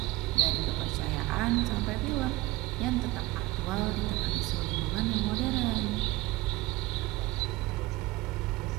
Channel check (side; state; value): left; quieter; 19.1 dB